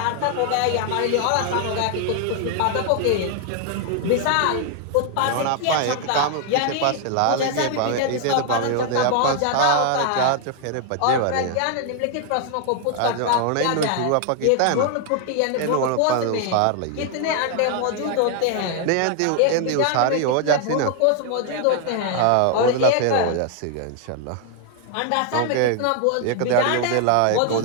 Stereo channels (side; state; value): both; different; correlation 0.00